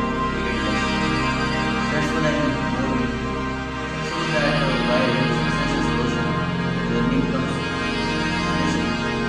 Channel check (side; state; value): both; identical; correlation 1.00